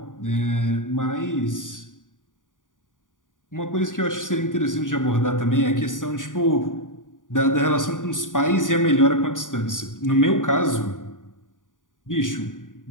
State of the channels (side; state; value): right; late; 0.88 ms